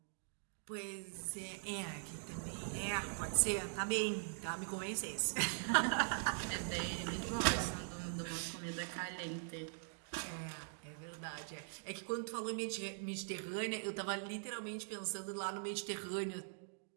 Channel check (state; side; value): silent; left; digital silence